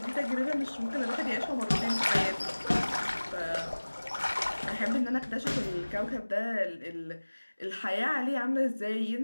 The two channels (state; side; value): inverted; both; correlation -1.00